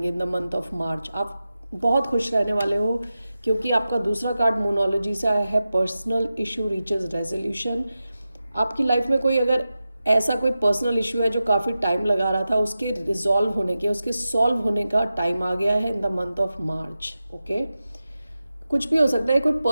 इन द मंथ ऑफ मार्च। आप बहुत खुश रहने वाले हो क्योंकि आपका दूसरा कार्ड मोनोलॉजी से आया है, पर्सनल इशू रीचेज रेजोल्यूशन। आपकी लाइफ में कोई अगर ऐसा कोई पर्सनल इशू है जो काफ़ी टाइम लगा रहा था, उसके रिजॉल्व होने के, उसके सॉल्व होने का टाइम आ गया है in the month of March. Okay, कुछ भी हो सकता है, कोई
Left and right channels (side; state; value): both; inverted; correlation -0.93